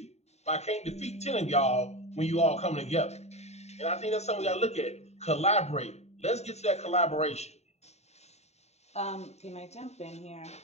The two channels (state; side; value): late; right; 0.32 ms